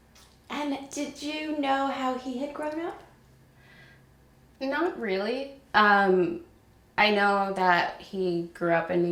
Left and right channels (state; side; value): identical; both; correlation 1.00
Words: And did you know how he had grown up? Not really. I know that he grew up in